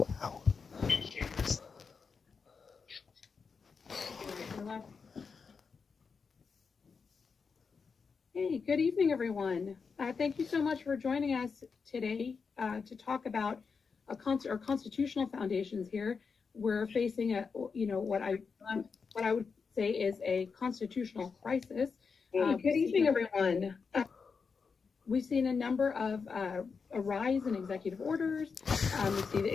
Hey, good evening, everyone. Thank you so much for joining us today to talk about our constitutional foundations here. We're facing what I would say is a constitutional crisis. Good evening, everyone. We've seen a number of a rise in executive orders. We see the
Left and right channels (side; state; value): right; quieter; 5.3 dB